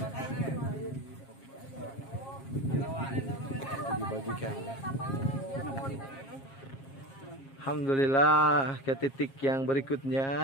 Dibagikan. Alhamdulillah ke titik yang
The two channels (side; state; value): right; late; 7.4 ms